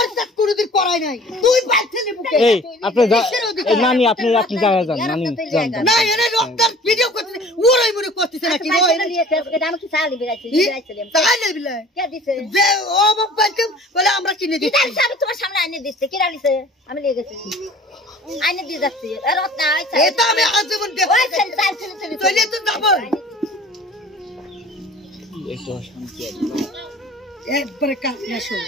সাথে কোনোদিন করাই নাই তুই বাড়িতে নেবুকে এই আপনি নানি আপনি জায়গা যান নানি যান না এনে ডক্টর ভিডিও করতে ওরাই মনে করতেছে নাকি ওই আমি কি চালি বেরাইছি তাহলে বিলে কে দিছে যে ও বাবাকে বলে আমরা কিনে দিচ্ছি তাহলে আমি তোমার সামনে আইনে দিতে কি রালিছে আমি লিয়ে গেছি আইনে দিয়ে যাচ্ছি রত্না আইছে এটা আমি আজীবন দেখব ওই চল চলে তো যাব একটু শান্তি একবারে কানে শোন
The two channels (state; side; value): normal; both; correlation 0.47